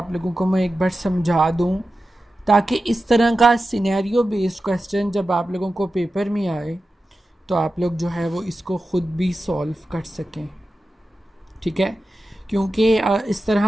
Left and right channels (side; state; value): both; normal; correlation 0.93